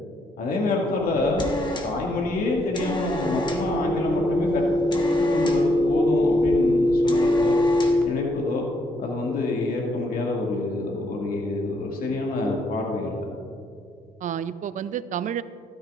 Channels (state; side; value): normal; both; correlation 0.73